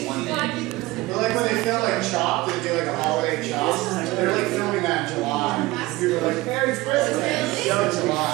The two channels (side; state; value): left; quieter; 20.0 dB